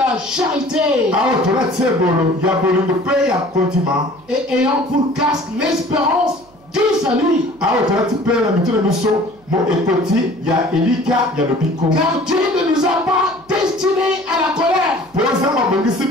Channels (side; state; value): right; noise; hum, 28 dB below the sound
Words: charité, et ayant pour casque l'espérance du salut. Car Dieu ne nous a pas destinés à la colère,